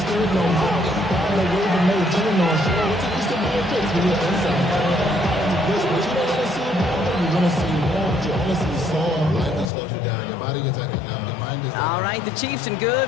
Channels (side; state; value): right; drops out; at 9.7 s